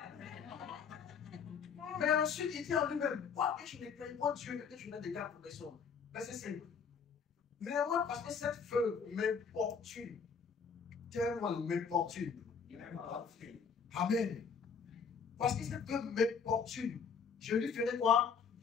Mais ensuite, il dit en lui-même, quoi que je ne craigne pas Dieu, que je n'ai des gars pour personne. Mais c'est simple. Mais moi, parce que cette veuve m'importune, tellement m'importune. Amen. Parce que cette veuve m'importune, je lui ferai quoi?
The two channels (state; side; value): quieter; right; 6.1 dB